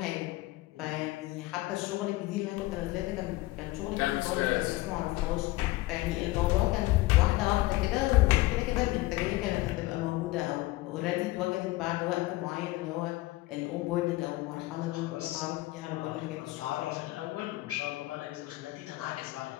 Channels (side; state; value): right; quieter; 19.1 dB